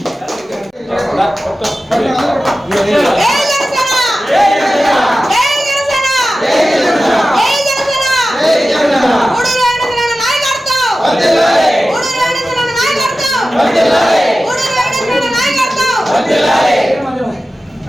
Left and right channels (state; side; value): normal; both; correlation 0.94